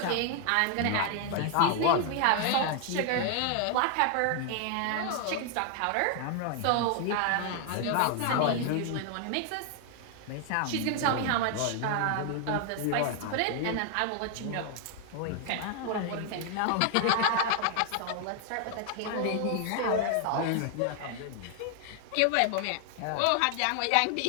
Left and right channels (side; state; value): both; different; correlation 0.00